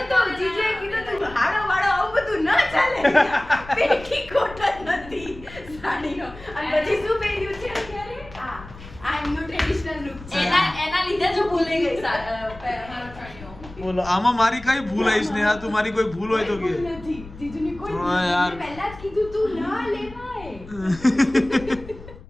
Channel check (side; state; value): left; noise; rumble, 17 dB below the sound